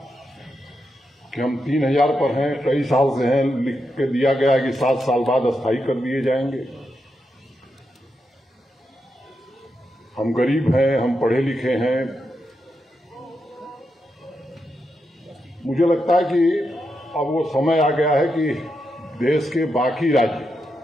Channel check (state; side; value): normal; both; correlation 0.85